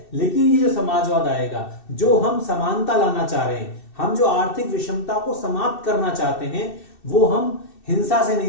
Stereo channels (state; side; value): late; right; 2.6 ms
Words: लेकिन ये जो समाजवाद आएगा, जो हम समानता लाना चाह रहे हैं, हम जो आर्थिक विषमता को समाप्त करना चाहते हैं, वो हम हिंसा से